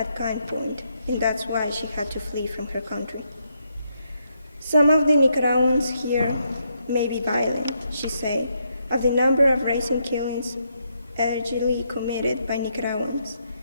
gunpoint, and that's why she had to flee from her country. "Some of the Nicaraguans here may be violent," she said, "of the number of recent killings allegedly committed by Nicaraguans,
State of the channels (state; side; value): inverted; both; correlation -0.78